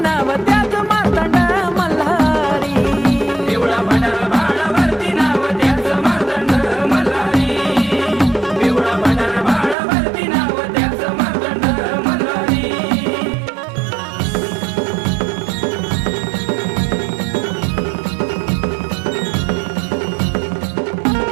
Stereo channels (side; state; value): left; drops out; at 9.8 s